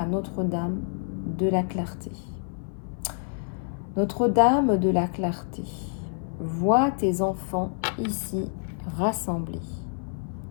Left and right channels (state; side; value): silent; right; 56 dB below the other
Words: Notre-Dame de la Clarté. Notre-Dame de la Clarté, vois tes enfants ici rassemblés.